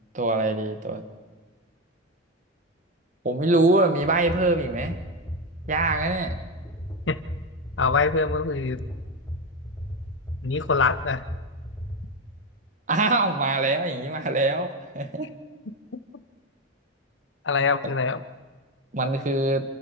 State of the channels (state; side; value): normal; both; correlation 0.12